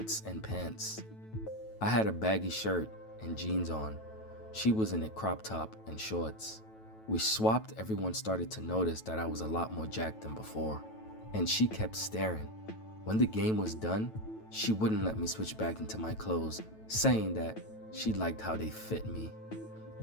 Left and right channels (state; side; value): late; right; 9.2 ms